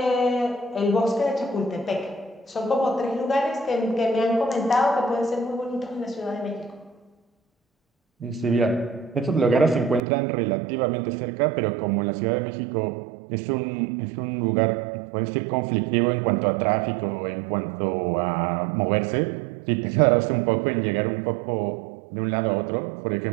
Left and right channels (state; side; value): drops out; left; at 10.0 s